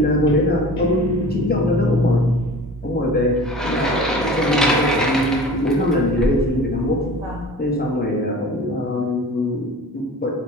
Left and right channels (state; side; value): normal; both; correlation 0.40